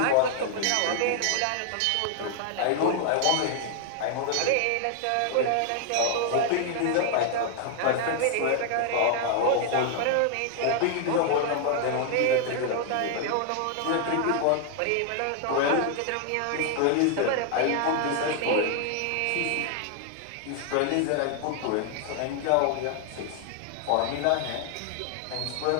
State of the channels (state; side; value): different; both; correlation 0.00